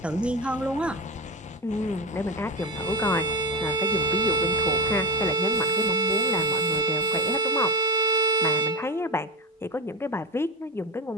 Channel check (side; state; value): both; normal; correlation 0.19